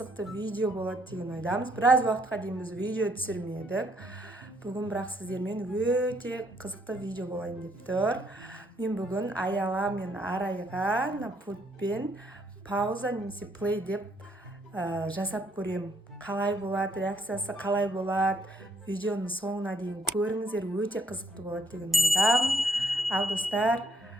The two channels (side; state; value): both; normal; correlation 0.71